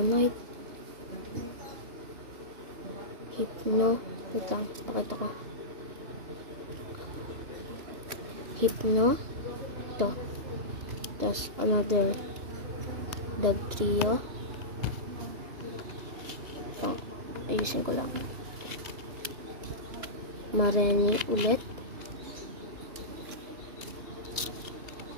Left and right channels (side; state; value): left; late; 2.9 ms